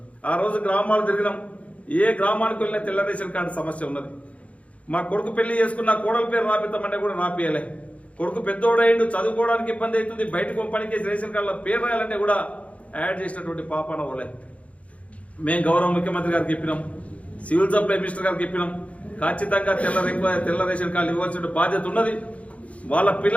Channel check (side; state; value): right; late; 0.065 ms